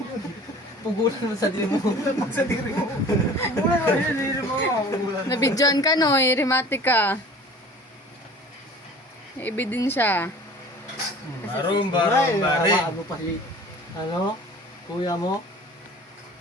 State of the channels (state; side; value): normal; both; correlation 0.45